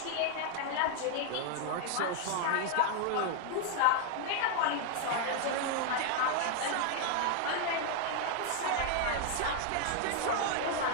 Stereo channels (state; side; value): different; both; correlation 0.00